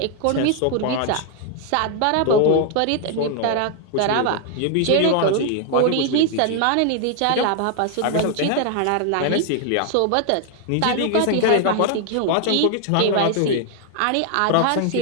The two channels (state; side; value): different; both; correlation 0.00